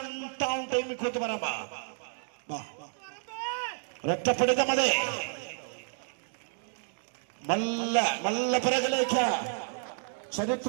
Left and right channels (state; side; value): silent; left; digital silence